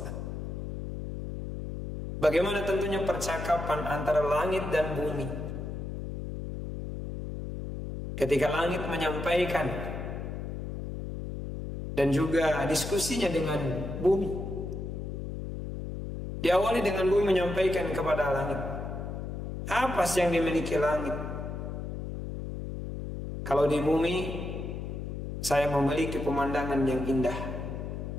Bagaimana tentunya percakapan antara langit dan bumi, ketika langit menyampaikan dan juga diskusinya dengan bumi. Diawali dengan bumi menyampaikan kepada langit, apa sih yang dimiliki langit? Kalau di bumi, saya memiliki pemandangan yang indah,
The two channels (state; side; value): noise; left; hum, 6 dB below the sound